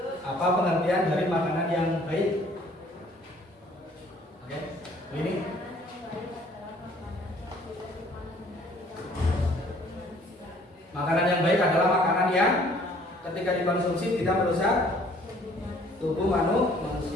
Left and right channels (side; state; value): both; normal; correlation 0.58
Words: Apa pengertian dari makanan yang baik? Oke, ini makanan yang baik adalah makanan yang ketika dikonsumsi tidak merusak tubuh